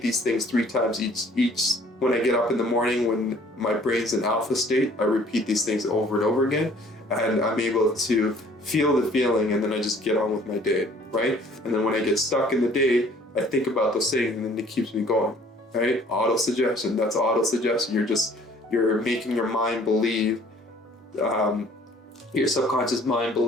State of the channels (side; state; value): both; normal; correlation 0.55